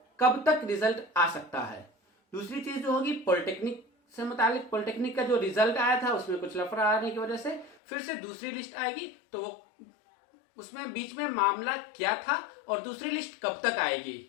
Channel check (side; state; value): right; drops out; at 7.8 s